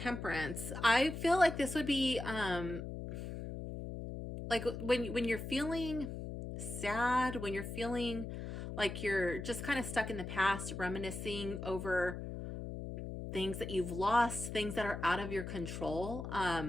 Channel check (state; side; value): noise; left; hum, 7 dB below the sound